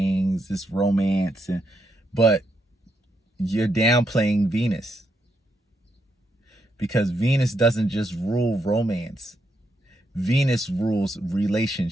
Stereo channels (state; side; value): normal; both; correlation 0.80